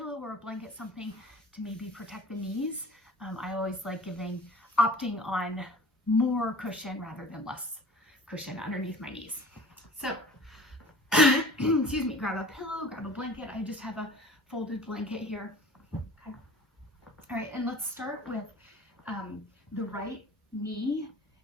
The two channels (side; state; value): both; normal; correlation 0.44